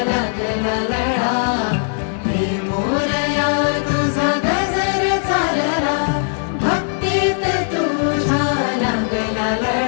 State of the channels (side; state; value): right; silent; 67 dB below the other